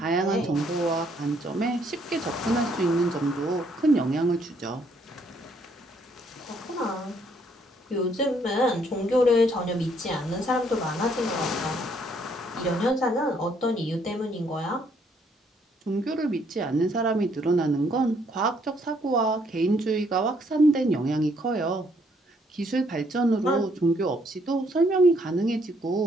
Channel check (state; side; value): normal; both; correlation 0.68